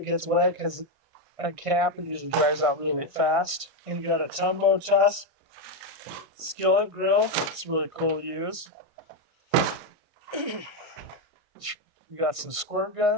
gets wet because at camp it usually dries out really fast. And you got a tumbo tusk skillet grill. It's really cool to use. You got some squirt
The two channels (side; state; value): left; late; 1.6 ms